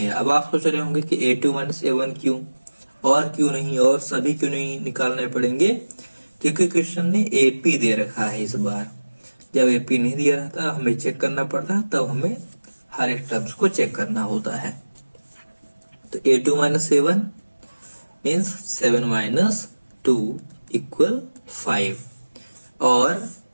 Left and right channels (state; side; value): inverted; both; correlation -1.00